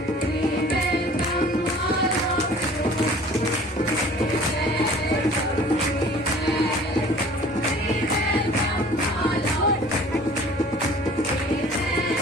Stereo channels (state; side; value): normal; both; correlation 0.48